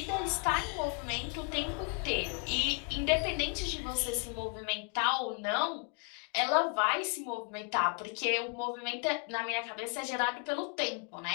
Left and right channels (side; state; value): right; quieter; 34.1 dB